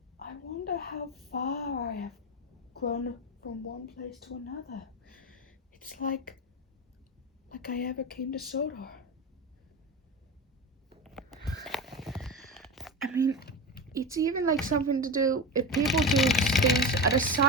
I wonder how far I have grown from one place to another. It's like I ever came to Sodor. I mean, it's even like something to do if people do things at a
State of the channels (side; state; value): both; normal; correlation 0.22